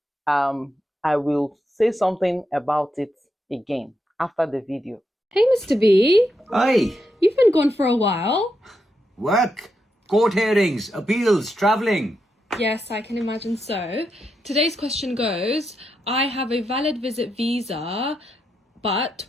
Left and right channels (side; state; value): both; normal; correlation 0.84